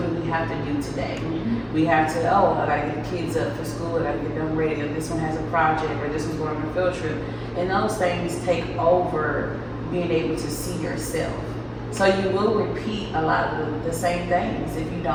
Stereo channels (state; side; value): identical; both; correlation 1.00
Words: do we have to do today? We have to, I gotta get the kids up for school, I gotta get them ready, or this one has a project, or this one's going on a field trip. And those things take over being able to see yourself. So you will repeat a lot of the same things if you